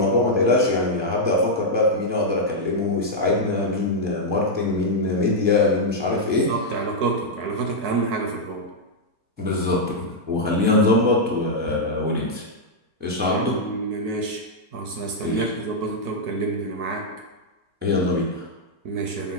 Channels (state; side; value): late; left; 4.5 ms